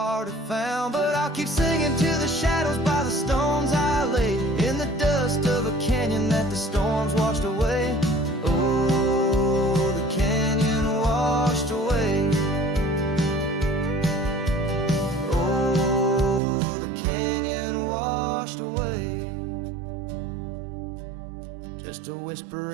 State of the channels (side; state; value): left; drops out; at 16.4 s